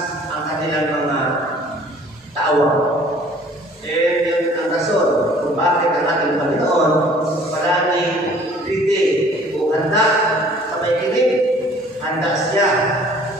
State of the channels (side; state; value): both; normal; correlation 0.53